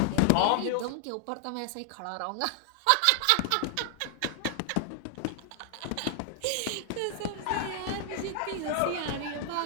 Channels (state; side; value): different; both; correlation 0.00